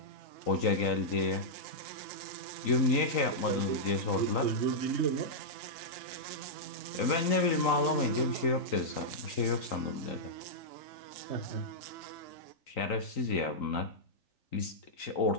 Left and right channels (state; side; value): late; right; 3.9 ms